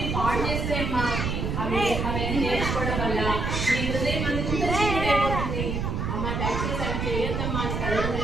పాడు చేస్తాయమ్మా. అవన్నీ నేర్చుకోవడం వల్ల నీ హృదయం అంతా చీకటైపోతుంది. అమ్మ దయచేసి అవి చేయొద్దమ్మా అని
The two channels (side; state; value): right; noise; rumble, 1 dB below the sound